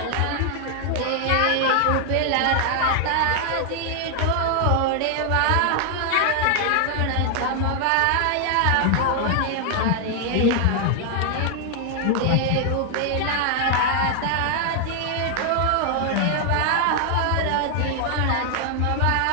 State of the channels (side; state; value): both; different; correlation 0.00